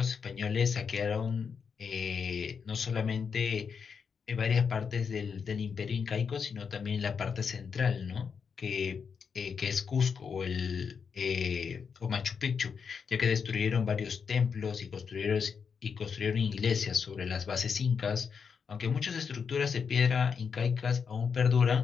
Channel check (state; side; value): quieter; right; 6.2 dB